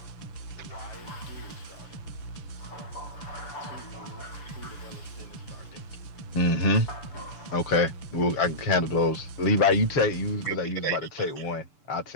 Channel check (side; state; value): right; late; 6.8 ms